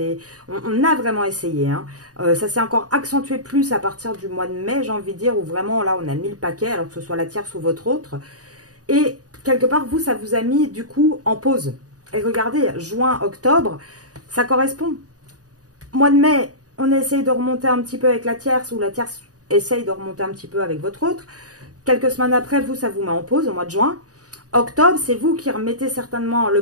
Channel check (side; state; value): left; late; 0.67 ms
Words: on a vraiment essayé. Hein. Ça s'est encore accentué plus à partir du mois de mai, j'ai envie de dire, où vraiment là on a mis le paquet, alors que ce soit la tierce ou votre autre. Et quelque part, vous, ça vous a mis du coup en pause. Et regardez, juin, octobre, ça correspond. Mois de mai, on essaye de remonter un petit peu avec la tierce, ou la tierce essaye de remonter un petit peu avec votre autre. Quelques semaines après, vous, ça vous met en pause au mois de juin. Octobre, c'est vous qui remettez certainement